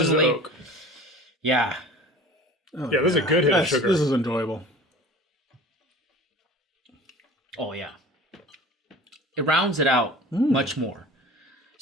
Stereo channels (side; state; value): both; normal; correlation 0.41